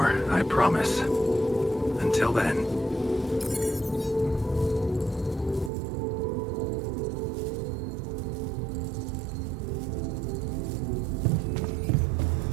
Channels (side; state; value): left; drops out; at 5.7 s